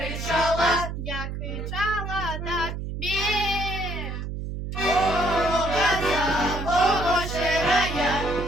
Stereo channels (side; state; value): right; noise; hum, 5 dB below the sound